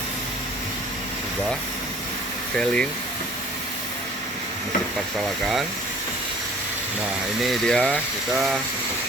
kubah selling Masjid Parsalakan. Nah, ini dia, kita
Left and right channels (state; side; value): normal; both; correlation 0.51